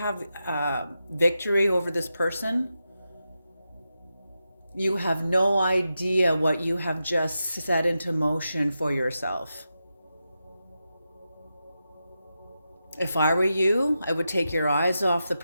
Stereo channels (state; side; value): inverted; both; correlation -0.89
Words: victory over this person, you have no idea what you have just set into motion for yourself. If I were you, I would take your eyes off the